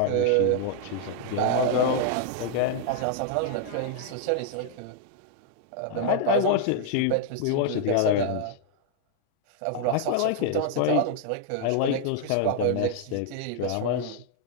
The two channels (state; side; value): different; both; correlation 0.00